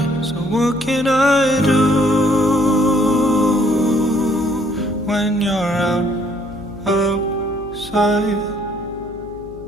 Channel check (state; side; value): noise; left; hum, 20 dB below the sound